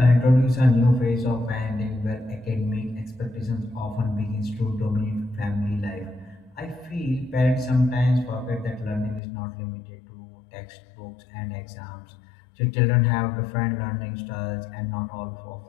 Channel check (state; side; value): drops out; right; at 9.2 s